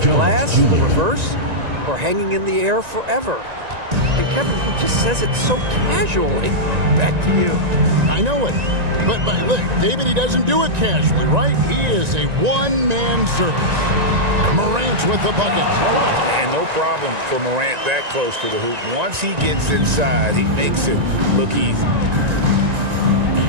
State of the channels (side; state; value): left; late; 1.9 ms